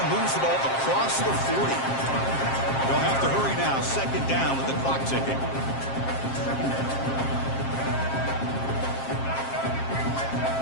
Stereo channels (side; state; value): right; late; 7.5 ms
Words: moves the ball across the 40. They'll have to hurry now. Second down with the clock ticking.